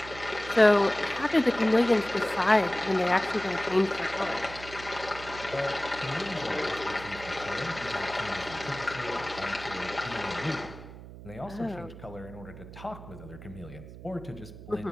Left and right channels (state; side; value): noise; right; hum, 15 dB below the sound